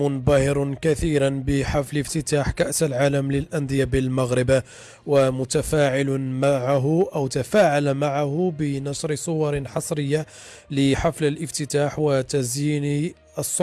كثيرا بحفل افتتاح كأس العالم للأندية بالمغرب، ومتفاعل معه أو تفاعل معه بنشر صور حصرية لحفل الافتتاح وتزيين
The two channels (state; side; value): identical; both; correlation 1.00